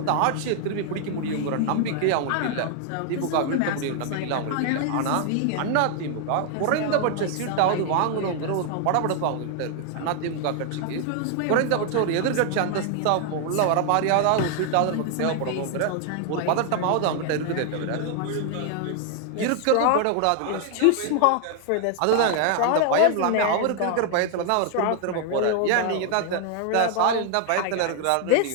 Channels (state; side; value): different; both; correlation 0.00